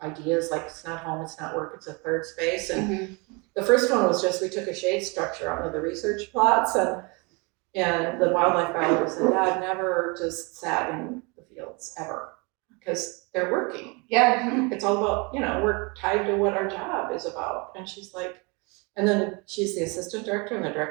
ideas like it's not home, it's not work, it's a third space. And the first one was just, we took a shade structure out of the research plots, and the wildlife biologists said, Dad never just sat in the fields ever, because they're working. It's all about, we're tied to what our job is about. And she's like, and then she's the assistant director, and the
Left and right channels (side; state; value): left; quieter; 29.8 dB